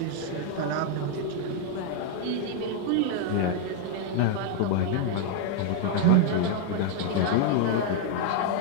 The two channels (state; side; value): different; both; correlation 0.00